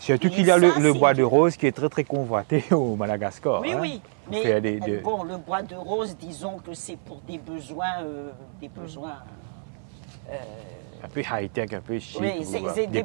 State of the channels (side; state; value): left; silent; 60 dB below the other